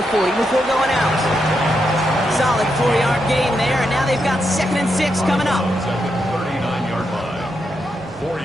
40 before going out. Solid 4-yard gain there, and now they've got 2nd and 6 coming up. At the 39-yard line. 4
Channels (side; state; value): both; normal; correlation 0.83